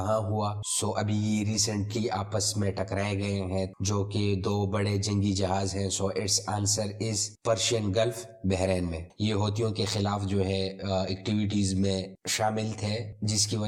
ہوا؟ سو ابھی یہ ریسنٹلی آپس میں ٹکرائے گئے ہیں جو کہ دو بڑے جنگی جہاز ہیں۔ So its answer is Persian Gulf, Bahrain میں۔ یہ ہوتیوں کے خلاف جو ہے ایکٹیویٹیز میں شامل تھے، جس کی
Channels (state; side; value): identical; both; correlation 1.00